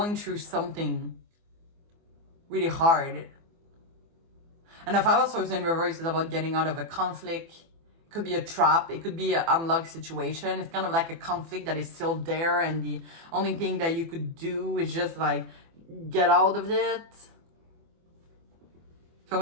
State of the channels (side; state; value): left; late; 24 ms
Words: through something really hard. And the Five of Swords in reverse is about getting out of a conflict. It could be a trap. It could be an unlocked situation. It's kind of like a conflict that is still there, and the only thing that you could do is just like get out of it. So